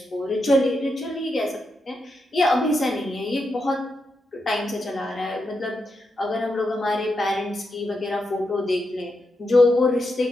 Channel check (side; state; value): both; normal; correlation 0.85